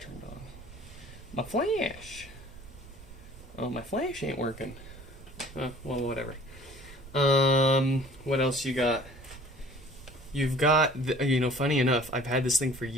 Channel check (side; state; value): right; noise; rumble, 18 dB below the sound